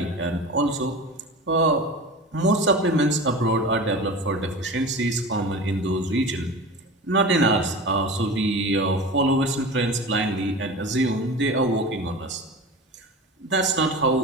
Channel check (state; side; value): normal; both; correlation 0.32